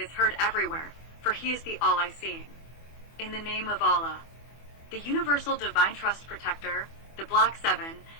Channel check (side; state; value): right; late; 24 ms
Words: heard everywhere, for He is the all-I-seeing. In the name of Allah. The Universal Divine Trust Protector, the Black Seven,